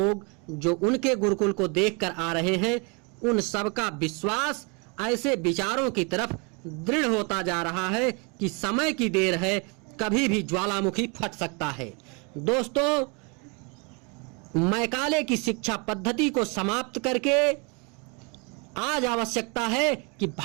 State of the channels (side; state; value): left; quieter; 32.2 dB